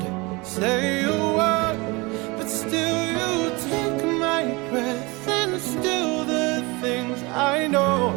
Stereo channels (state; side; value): quieter; left; 25.4 dB